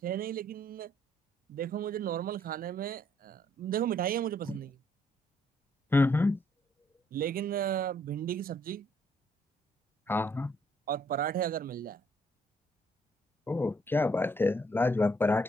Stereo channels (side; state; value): both; normal; correlation 0.67